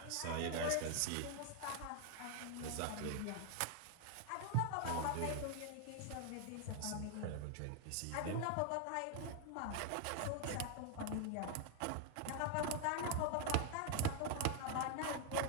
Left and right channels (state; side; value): different; both; correlation 0.00